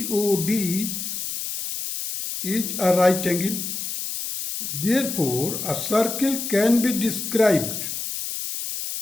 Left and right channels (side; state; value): left; noise; hiss, 5 dB below the sound